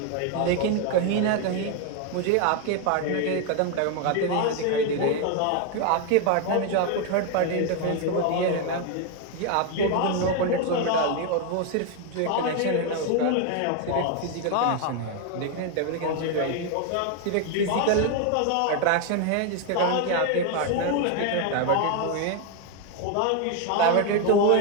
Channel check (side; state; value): both; different; correlation 0.01